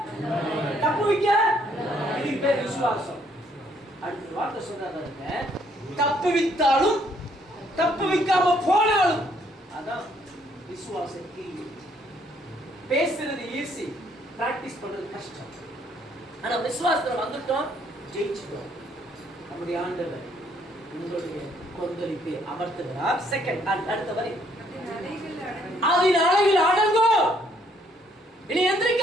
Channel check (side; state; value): both; normal; correlation 0.67